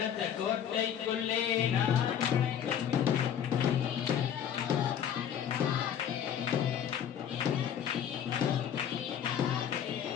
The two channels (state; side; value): quieter; right; 9.1 dB